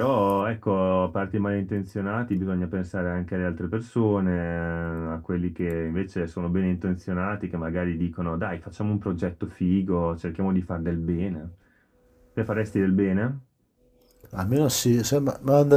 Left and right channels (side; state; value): both; identical; correlation 1.00